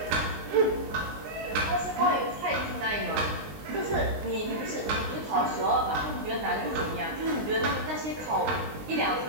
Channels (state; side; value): late; left; 19 ms